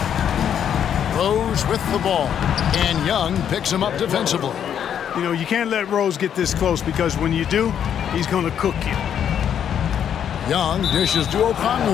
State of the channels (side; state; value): right; quieter; 9.0 dB